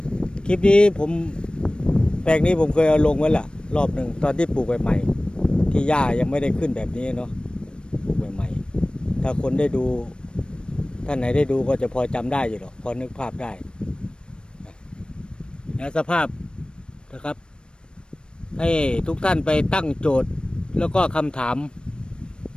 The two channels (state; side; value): late; right; 0.054 ms